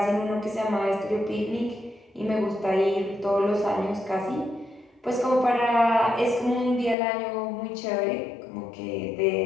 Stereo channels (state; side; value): drops out; right; at 7.0 s